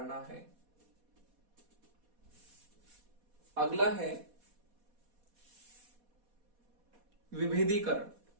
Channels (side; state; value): left; late; 4.2 ms